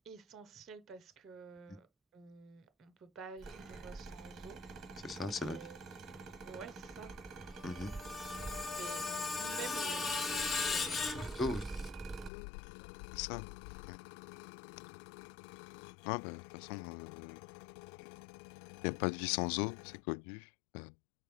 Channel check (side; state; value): right; drops out; at 12.3 s